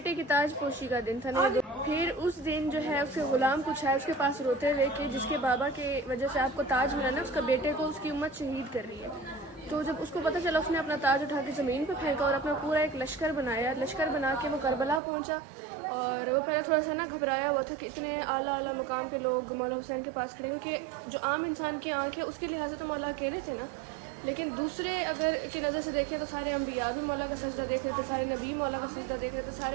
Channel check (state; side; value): drops out; left; at 15.0 s